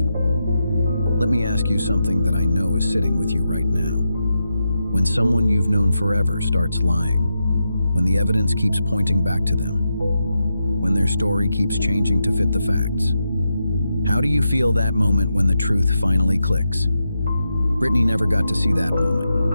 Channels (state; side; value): inverted; both; correlation -0.87